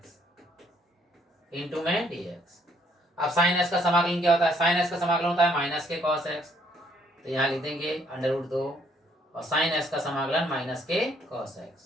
इंटू में dx। अब साइन एक्स का समाकलन क्या होता है? साइन एक्स का समाकलन होता है माइनस के कॉस एक्स, तो यहाँ लिख देंगे √2 और साइन एक्स का समाकलन माइनस के कॉस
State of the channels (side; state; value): both; normal; correlation 0.67